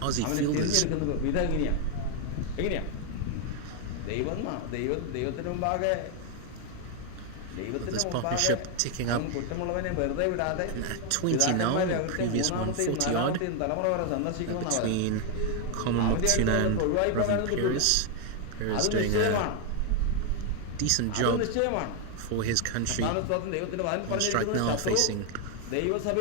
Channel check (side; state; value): both; different; correlation 0.01